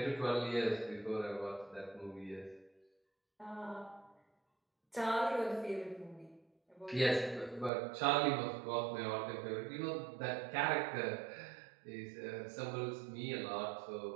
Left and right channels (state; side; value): drops out; left; at 7.7 s